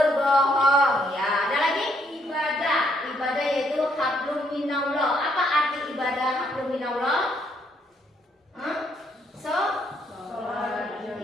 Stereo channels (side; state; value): both; normal; correlation 0.71